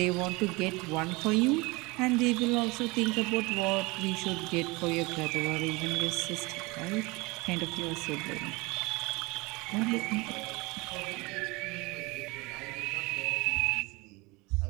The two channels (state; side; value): quieter; left; 24.6 dB